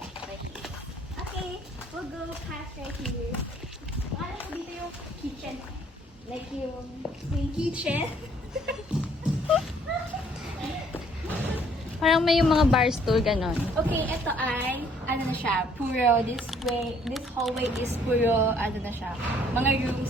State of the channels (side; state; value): both; normal; correlation 0.62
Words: Okay, we'll go past right here. Wala ko dito yung kitchen. Like yung kitchen. Parang may yung mga bar stool, ganon. Okay, ito ay, ano na siya, puro, this hallway is puro, ano na siya, mga